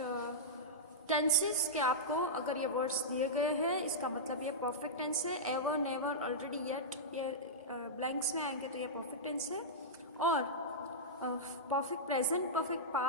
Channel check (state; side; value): normal; both; correlation -0.11